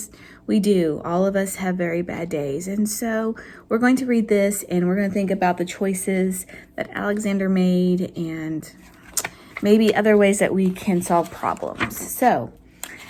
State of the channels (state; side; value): identical; both; correlation 1.00